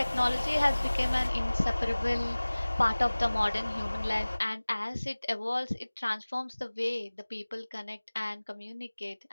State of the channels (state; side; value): inverted; both; correlation -1.00